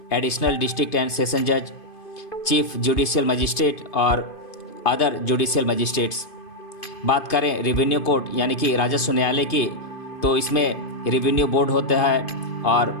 एडिशनल डिस्ट्रिक्ट एंड सेशन जज, चीफ जुडिशियल मजिस्ट्रेट और अदर जुडिशियल मजिस्ट्रेट्स। बात करें रेवेन्यू कोर्ट यानी कि राजस्व न्यायालय की, तो इसमें रेवेन्यू बोर्ड होता है और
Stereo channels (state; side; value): late; right; 2.5 ms